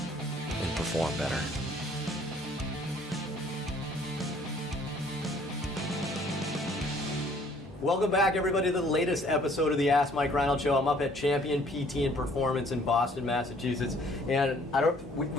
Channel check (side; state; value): both; normal; correlation 0.58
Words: and perform better. Welcome back, everybody, to the latest episode of the Ask Mike Reinold Show. I'm up at Champion PT and Performance in Boston, Massachusetts, and